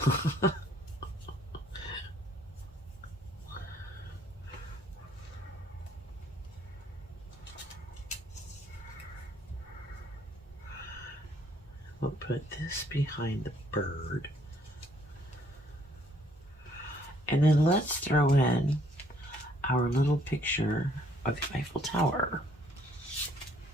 We'll put this behind the bird. And then let's throw in our little picture of the Eiffel Tower.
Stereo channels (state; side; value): normal; both; correlation 0.65